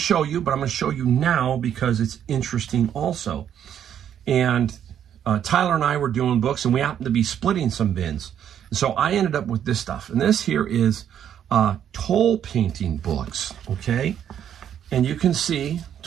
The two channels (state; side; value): quieter; left; 9.6 dB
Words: you, but I'm going to show you now because it's interesting also. And Tyler and I were doing books, and we happened to be splitting some bins. So I ended up with this stuff. And this here is toll painting books, okay? And you can see